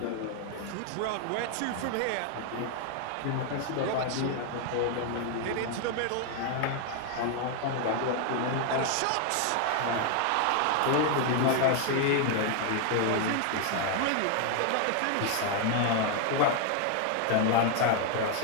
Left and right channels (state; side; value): different; both; correlation 0.00